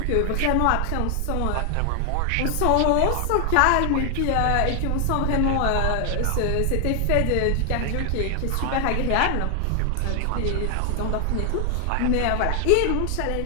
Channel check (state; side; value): different; both; correlation 0.00